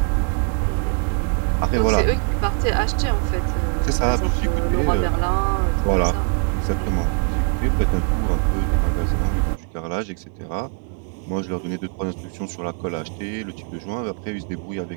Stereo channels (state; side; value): quieter; left; 38.3 dB